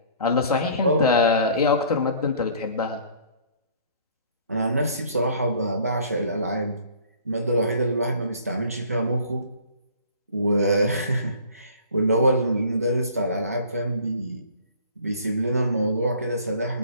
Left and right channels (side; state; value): both; inverted; correlation -0.52